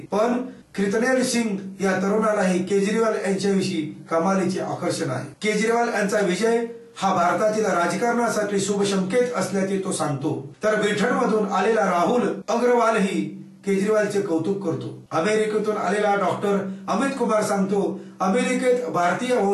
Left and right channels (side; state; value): both; identical; correlation 1.00